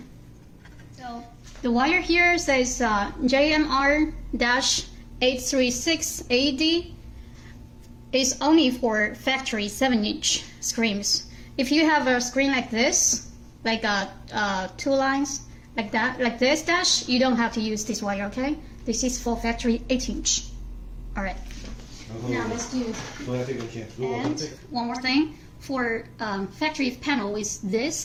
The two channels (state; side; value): identical; both; correlation 1.00